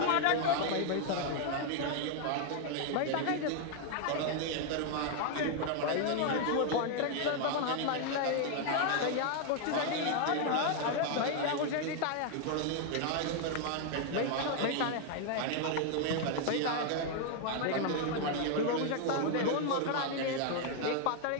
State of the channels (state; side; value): different; both; correlation 0.00